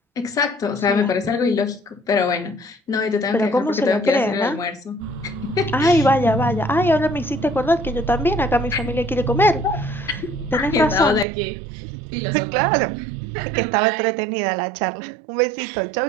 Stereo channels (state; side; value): drops out; left; at 11.2 s